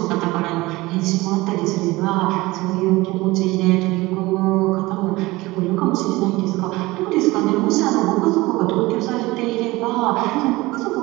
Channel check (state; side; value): quieter; left; 20.5 dB